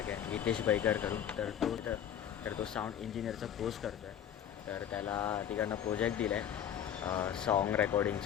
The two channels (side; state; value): right; quieter; 9.7 dB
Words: आहे, हितेश बैकर करून. तर तो साऊंड इंजिनिअरचा कोर्स करतो आहे. तर त्याला तिकडनं प्रोजेक्ट दिला आहे सॉन्ग